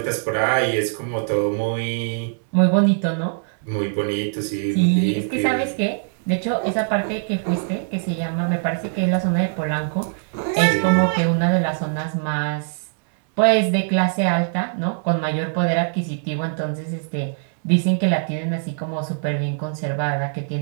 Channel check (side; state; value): left; silent; digital silence